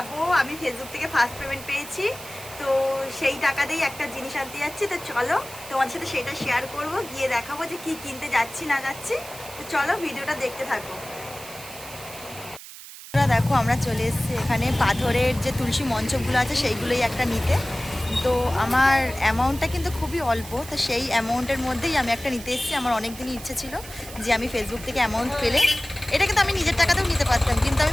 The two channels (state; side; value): noise; right; hiss, 15 dB below the sound